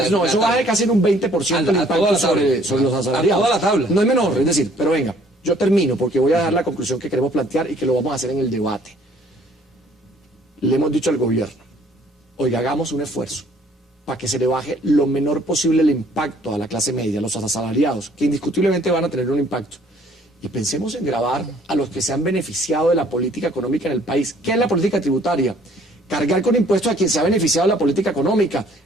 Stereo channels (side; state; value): both; normal; correlation 0.59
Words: no, eso baja casi en un 20% el impacto sobre los asalariados. A toda la tabla. No es menor, es decir, pero venga, yo termino porque voy a dar la conclusión que queremos plantear y que lo vamos a hacer en el debate. Le hemos dicho al gobierno, oiga, hagamos un esfuerzo para que se le baje lo menor posible el impacto a la clase media, a los asalariados, que indiscutiblemente van a tener un impacto. Y pensemos en gravar a los que se han beneficiado de la política económica en el país. ¿Qué es la política tributaria? Cargar con impuestos a quien se ha beneficiado de la política económica,